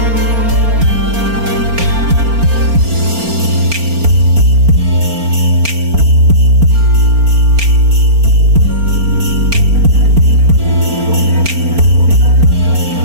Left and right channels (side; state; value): left; late; 4.4 ms